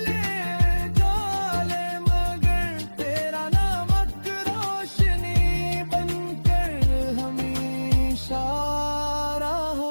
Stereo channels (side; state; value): both; inverted; correlation -1.00